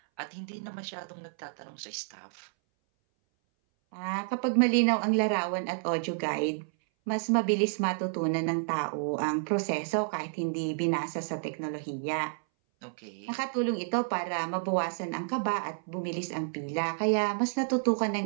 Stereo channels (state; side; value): silent; left; 58 dB below the other